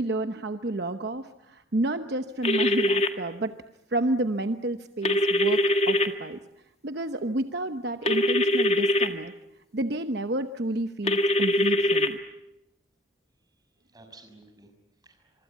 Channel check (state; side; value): normal; both; correlation 0.51